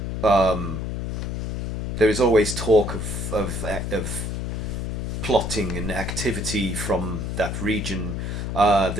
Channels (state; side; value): noise; left; hum, 3 dB below the sound